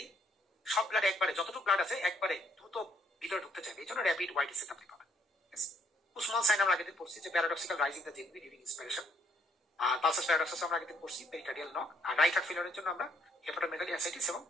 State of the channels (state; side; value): normal; both; correlation 0.68